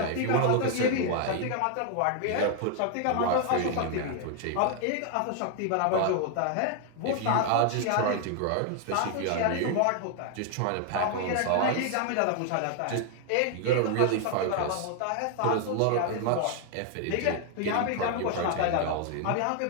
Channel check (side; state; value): both; different; correlation 0.00